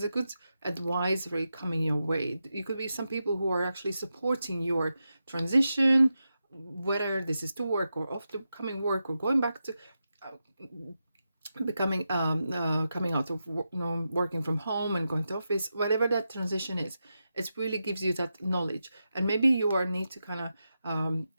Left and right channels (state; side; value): inverted; both; correlation -0.89